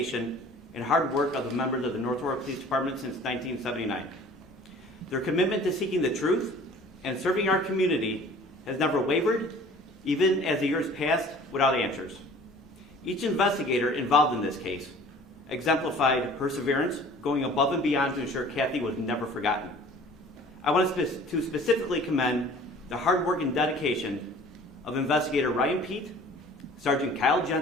and hard work of the members of the North Aurora Police Department since 1979. Their commitment to seeking the truth and serving our community has never wavered, even as the years passed without answers. Each investigator involved in this case exemplified perseverance, going above and beyond to ensure Kathy was never forgotten. I want to specifically commend the hard work and dedication of Investigator Ryan Pete, Sergeant Kyle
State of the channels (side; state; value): both; normal; correlation 0.48